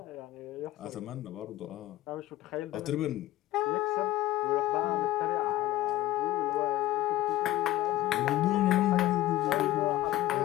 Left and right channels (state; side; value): quieter; right; 15.5 dB